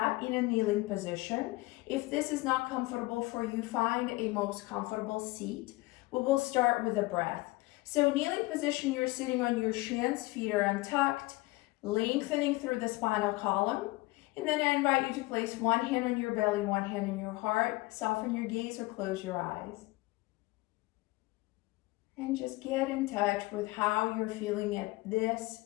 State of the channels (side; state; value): right; quieter; 21.5 dB